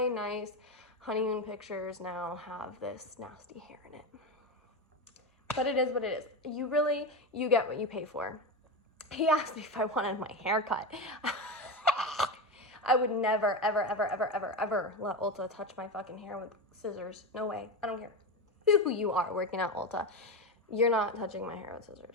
nice honeymoon pictures now have this nasty hair in it. But it is what it is. You get what you pay for. He asked me if I wanted my hair cut. I would never, ever, ever, ever, ever, ever let Ulta touch my fucking hair with scissors. No way. I don't care who you are working at Ulta. You're not touching my hair with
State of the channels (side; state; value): both; normal; correlation 0.17